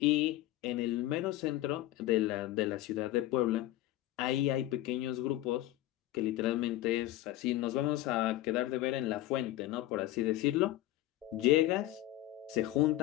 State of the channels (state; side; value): quieter; right; 15.5 dB